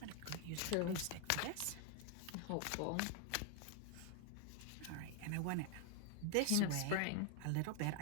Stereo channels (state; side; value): different; both; correlation 0.00